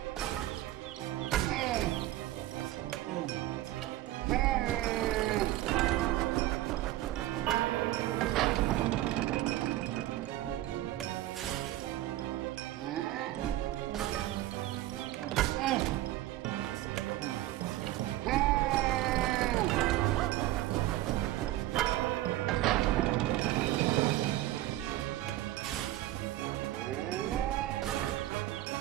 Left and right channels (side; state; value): left; quieter; 15.2 dB